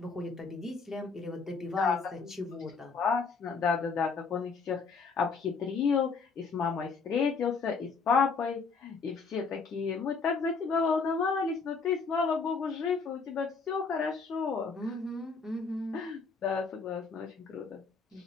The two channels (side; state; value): right; quieter; 4.9 dB